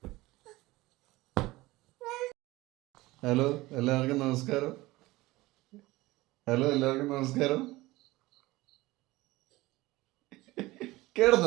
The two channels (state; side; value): quieter; left; 19.5 dB